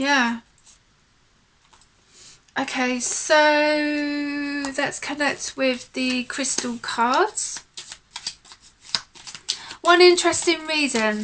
Okay, so let's connect with the crystal cards. One interesting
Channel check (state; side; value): identical; both; correlation 1.00